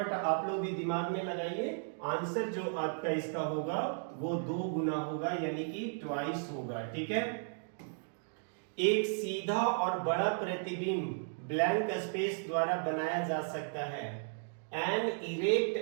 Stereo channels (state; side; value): silent; left; digital silence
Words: आप लोग भी दिमाग में लगाइए। आंसर जो आपका इसका होगा वो 2 गुना होगा, यानी कि ट्वाइस होगा। ठीक है, एक सीधा और बड़ा प्रतिबिंब ब्लैंक स्पेस द्वारा बनाया जा सकता है। An erect